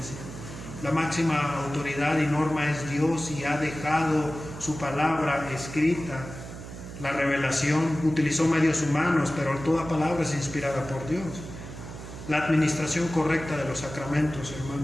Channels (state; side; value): noise; right; hum, 12 dB below the sound